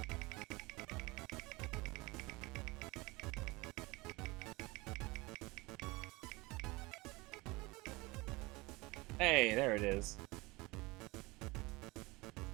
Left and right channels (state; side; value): quieter; left; 23.4 dB